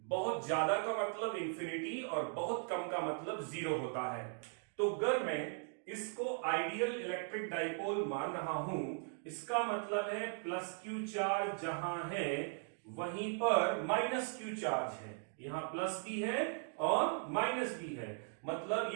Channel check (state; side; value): silent; left; 52 dB below the other